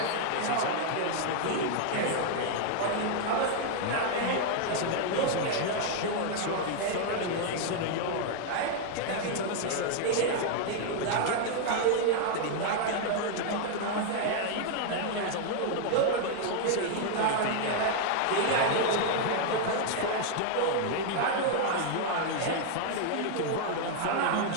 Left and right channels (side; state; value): both; different; correlation -0.01